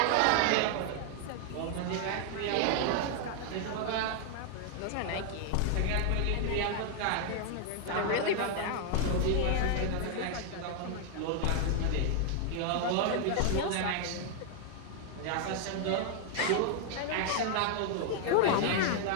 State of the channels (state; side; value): different; both; correlation 0.00